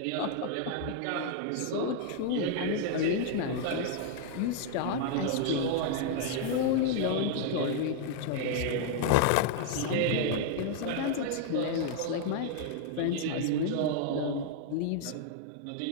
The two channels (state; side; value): different; both; correlation 0.00